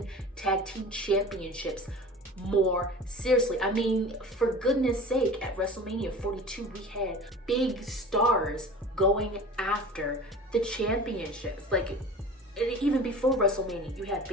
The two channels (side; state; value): both; normal; correlation 0.39